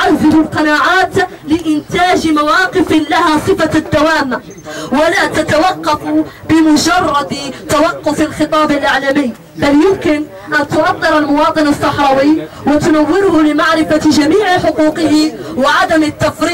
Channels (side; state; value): both; identical; correlation 1.00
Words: القناعات لإنتاج مواقف لها صفة الدوام ولا تتوقف بمجرد توقف الخطاب الإعلامي، بل يمكن أن تؤطر المواطن الصحراوي وتنوره لمعرفة جميع حقوقه وعدم